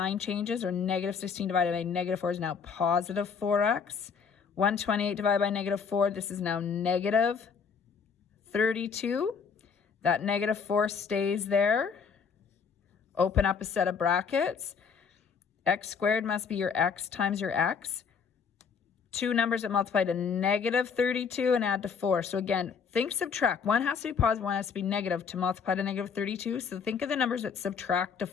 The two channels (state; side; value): quieter; right; 6.2 dB